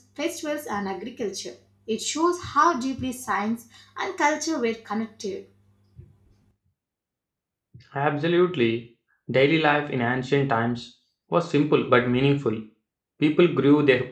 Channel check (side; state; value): both; identical; correlation 1.00